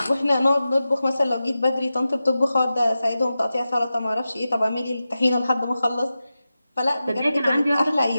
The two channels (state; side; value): inverted; both; correlation -0.93